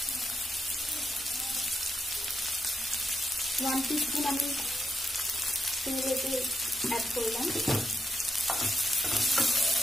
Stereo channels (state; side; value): normal; both; correlation 0.82